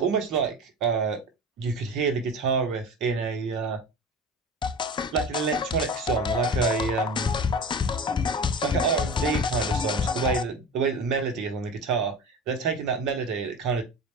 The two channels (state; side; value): normal; both; correlation 0.31